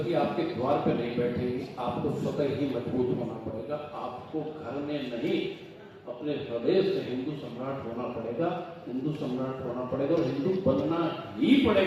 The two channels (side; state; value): both; identical; correlation 1.00